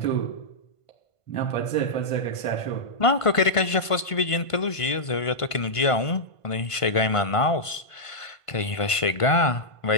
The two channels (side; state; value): right; late; 1.5 ms